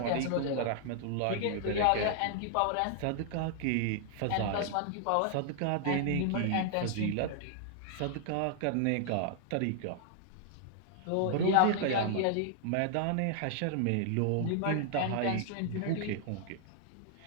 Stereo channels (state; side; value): different; both; correlation 0.00